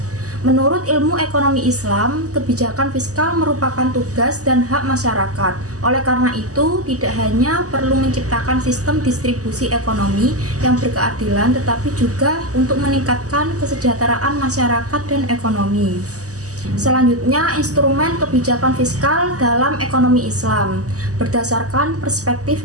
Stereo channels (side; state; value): left; late; 0.66 ms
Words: Menurut ilmu ekonomi Islam, kebijakan fiskal merupakan tugas dan hak masyarakat. Oleh karena itu, tidak hanya perlu menciptakan sistem distribusi ekonomi yang berkeadilan, tetapi juga untuk meningkatkan kesejahteraan masyarakat dan ekonomi. Selanjutnya, instrumen kebijakan fiskal dalam ekonomi Islam. Berdasarkan perspektif